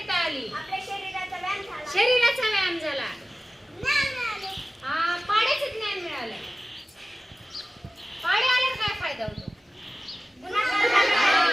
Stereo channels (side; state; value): both; normal; correlation 0.96